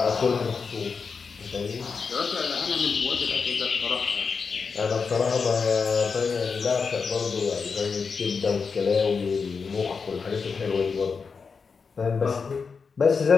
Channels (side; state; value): right; quieter; 5.3 dB